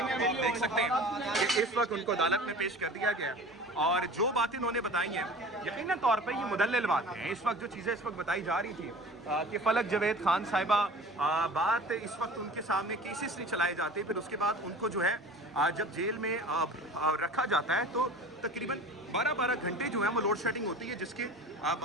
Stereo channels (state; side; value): normal; both; correlation 0.40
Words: देख सकते हैं कि इस वक्त उनको अदालत में पेश कर दिया गया, और जो बातें उन्होंने बताई हैं यकीनन तौर पर ये मुदल्लिल बातें हैं। इस वक्त जो चीज़ें इस वक्त बताई जा रही थी कि फलक जवेद खान साहिबा बात इस वक्त उनके सामने केसेस नहीं चलाए जाते, फिर उसके बाद उनको जो है जब जेल में रखा जाता है तो तकरीबन 12-12 घंटे जो है वो लोड शेडिंग होती है, जिसके